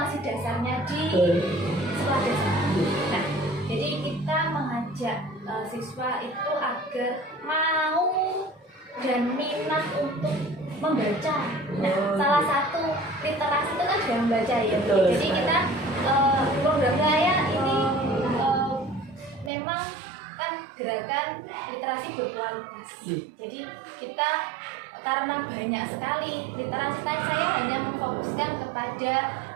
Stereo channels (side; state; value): left; drops out; at 19.5 s